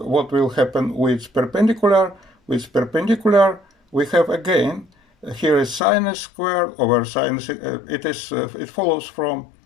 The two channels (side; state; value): right; drops out; at 5.8 s